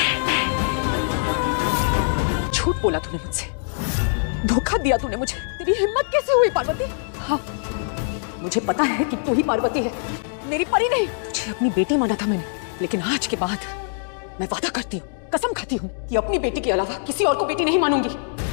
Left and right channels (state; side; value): silent; right; digital silence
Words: झूठ बोला तूने मुझसे, धोखा दिया तूने मुझे। तेरी हिम्मत कैसे हुई पार्वती? हाँ, मुझे पता है कि तू ही पार्वती है, मेरी परी नहीं। तुझे अपनी बेटी माना था मैंने, लेकिन आज के बाद मैं वादा करती हूँ, कसम खाती हूँ कि अपनी बेटी के अलावा किसी और को बेटी नहीं मानूंगी।